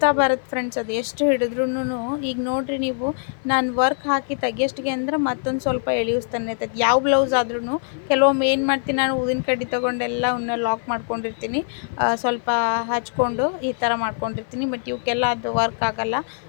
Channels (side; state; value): right; silent; 56 dB below the other